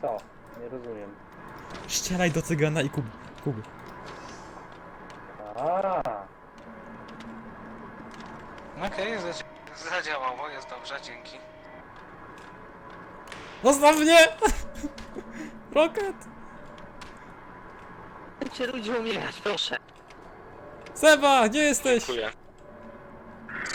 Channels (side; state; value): both; identical; correlation 1.00